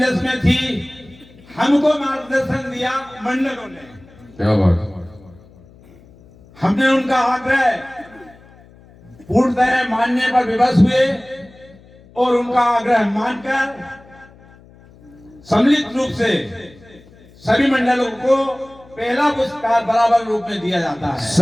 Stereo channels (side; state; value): left; noise; hum, 25 dB below the sound